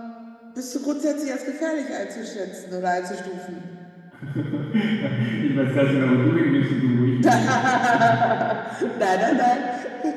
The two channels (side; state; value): both; identical; correlation 1.00